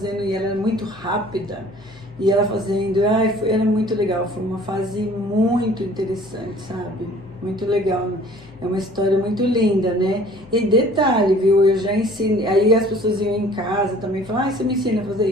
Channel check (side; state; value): left; noise; hum, 24 dB below the sound